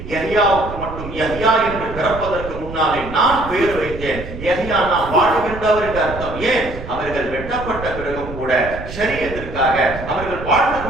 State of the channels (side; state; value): right; noise; rumble, 11 dB below the sound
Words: யஹ்யாவுக்கு மட்டும் யஹ்யா என்று பிறப்பதற்கு முன்னாலே நான் பெயர் வைத்தேன். யஹ்யா நான் வாழ்கின்றவர் என்று அர்த்தம். ஏன்? அவர்கள் வெட்டப்பட்ட பிறகும் கூட ஷரியத்திற்காக அவர்கள் வாழ்ந்து